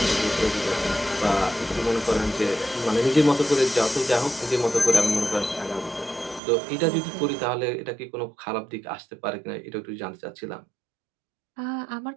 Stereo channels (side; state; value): left; drops out; at 6.4 s